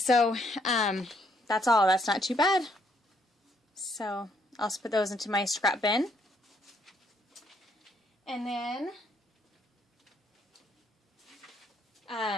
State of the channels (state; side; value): normal; both; correlation 0.70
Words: that's all. That's not too bad. So I'll just put those into my scrap bin. And then